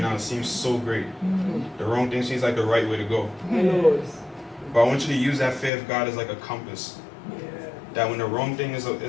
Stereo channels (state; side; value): drops out; right; at 5.7 s